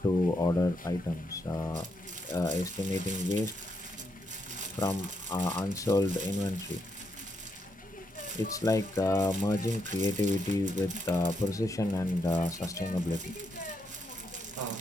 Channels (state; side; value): normal; both; correlation 0.80